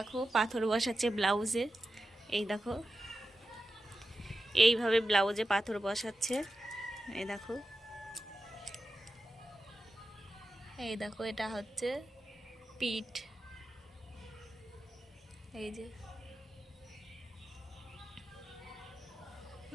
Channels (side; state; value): both; normal; correlation 0.92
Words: পাথর বসাচ্ছে ব্লাউজে। এই দেখো, এইভাবে ব্লাউজে পাথর বসাচ্ছে। এই দেখো, এই দেখো, এটা হচ্ছে পিঠ। এই যে